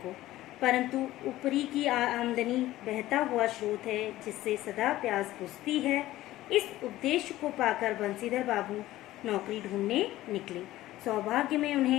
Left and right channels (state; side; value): quieter; right; 15.7 dB